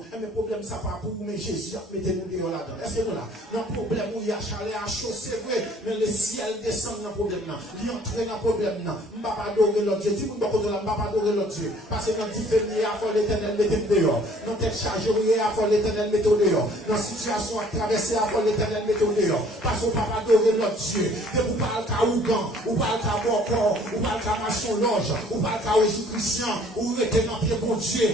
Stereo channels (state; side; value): normal; both; correlation 0.57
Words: Mais le problème, ça pas pour vous, mais Jésus a mis nous là-dedans. Est-ce que nous là? Dans le problème où il y a chalet à chaud, c'est vrai, mais le ciel descend dans le problème. Il entre dans le problème. Je ne vais pas adorer l'autre Dieu. Dis-moi, je ne vais pas adorer l'autre Dieu. Parce que dans le différent, il faut l'éternel mettre dehors. Dans telle charge, il faut l'éternel mettre dehors. Dans la situation à traverser, il faut l'éternel mettre dehors. Parce qu'on ne peut pas adorer l'autre Dieu. Et vous parlez qu'à Ougan, vous parlez qu'à Bocor, vous parlez qu'à Maçon Loge, vous parlez qu'à Jésus-Christian, vous mettez dans pied bon